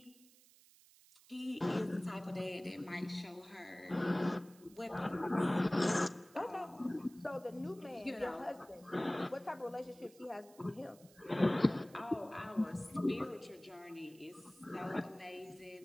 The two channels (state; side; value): noise; right; hiss, 25 dB below the sound